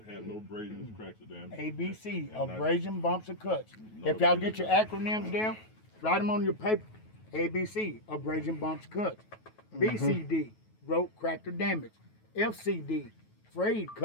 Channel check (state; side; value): late; right; 9.3 ms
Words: have no abrasions, cracks, or damage. ABC, And not- abrasion, bumps, or cuts. No If y'all abrasion. get your acronyms down, write them on your paper. ABC, abrasion, bumps, cuts. BCD, broke, cracked, or damaged. FCD, frayed,